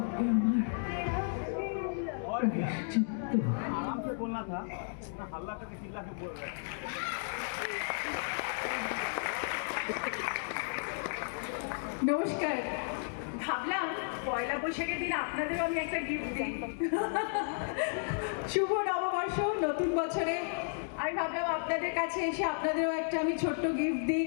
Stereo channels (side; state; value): right; silent; digital silence